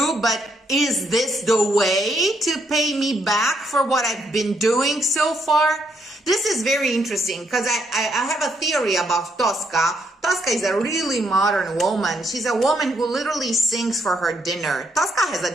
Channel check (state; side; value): normal; both; correlation 0.74